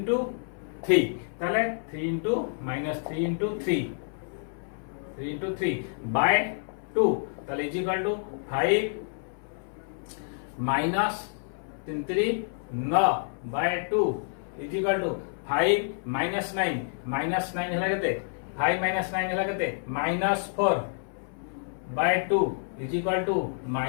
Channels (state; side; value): silent; right; 59 dB below the other